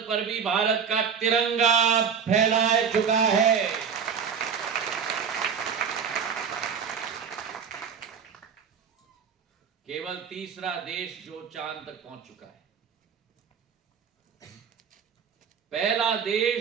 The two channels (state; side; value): quieter; left; 6.9 dB